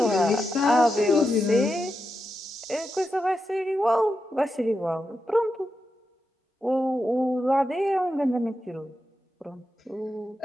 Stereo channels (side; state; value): both; normal; correlation 0.88